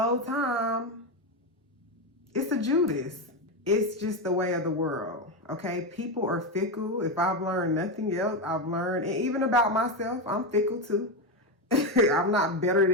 time, it's a Judas. It's just the way of the world, okay? People are fickle. If I've learned nothing else, I've learned, and even about myself, I'm fickle too. I'm not better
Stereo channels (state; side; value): normal; both; correlation 0.11